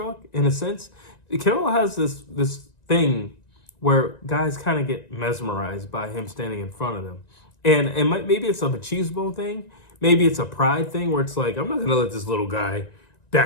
in a sense. Canelo has this thing where guys kind of get mesmerized by him standing in front of them. And maybe it's a machismo thing. Maybe it's a pride thing where it's like, I'm not going to let this little guy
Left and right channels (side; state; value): right; late; 1.9 ms